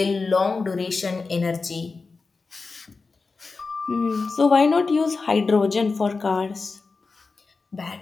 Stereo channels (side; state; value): right; quieter; 4.2 dB